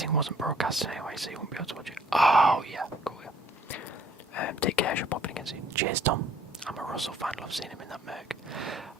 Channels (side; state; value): both; normal; correlation 0.60